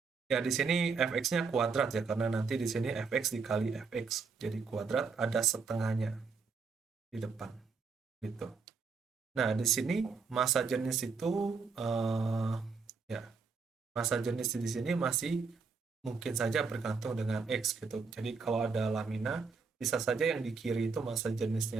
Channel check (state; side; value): quieter; left; 4.9 dB